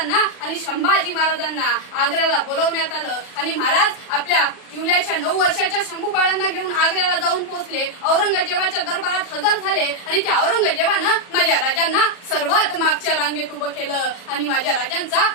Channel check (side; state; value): right; late; 40 ms